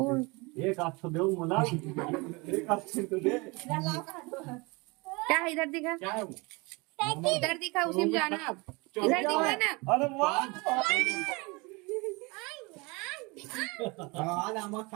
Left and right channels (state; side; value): quieter; left; 26.7 dB